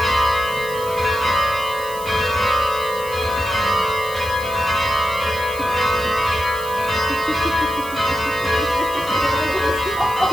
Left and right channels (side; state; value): right; noise; hiss, 15 dB below the sound